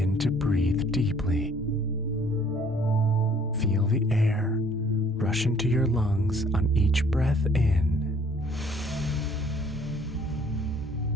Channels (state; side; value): normal; both; correlation 0.58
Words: to breathe deeply. Feel the air rush into your lungs on each breath in,